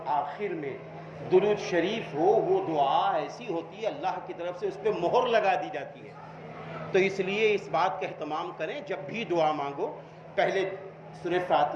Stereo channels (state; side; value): identical; both; correlation 1.00